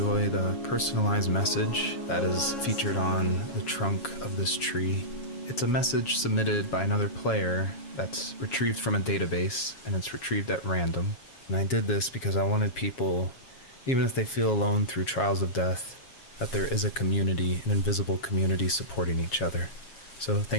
the personalized message that is featured on the trunk of this tree. It's a message submitted by another player that's retrieved from a database, and it's retrieved at random. And I did this because I wanted people, even if they feel alone through trials of death, that there is a community, an invisible community supporting each other. So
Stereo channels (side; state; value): right; late; 7.3 ms